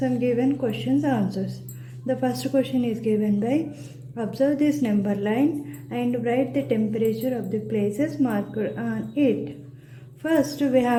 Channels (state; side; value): identical; both; correlation 1.00